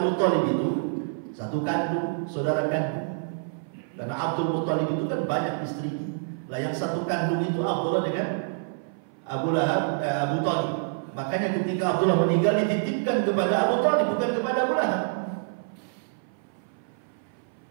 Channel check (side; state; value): left; silent; 57 dB below the other